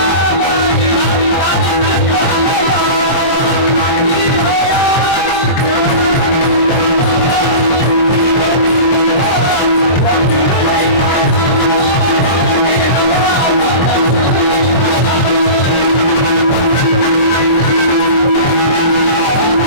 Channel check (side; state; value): right; late; 23 ms